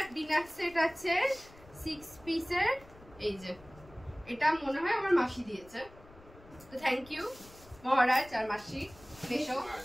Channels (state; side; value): noise; left; rumble, 22 dB below the sound